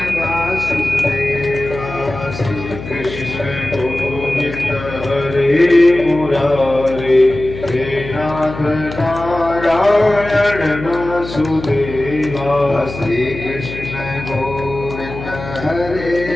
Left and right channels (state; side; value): noise; left; hum, 11 dB below the sound